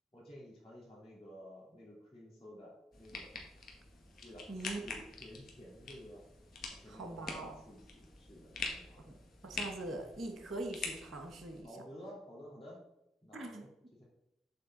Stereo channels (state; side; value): normal; both; correlation 0.68